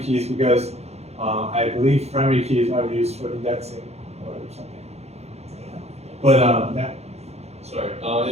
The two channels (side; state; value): left; late; 0.31 ms